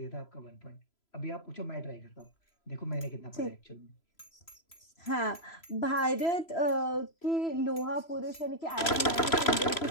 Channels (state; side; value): late; right; 3.0 ms